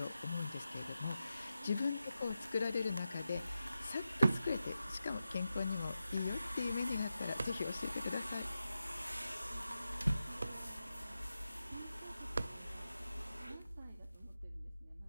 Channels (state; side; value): inverted; both; correlation -0.90